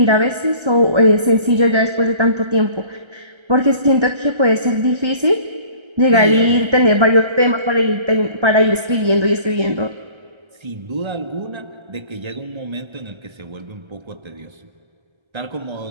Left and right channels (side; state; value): left; late; 1.3 ms